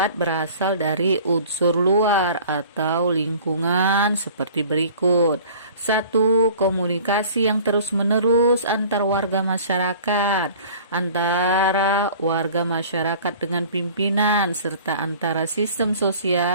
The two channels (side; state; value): both; inverted; correlation -0.46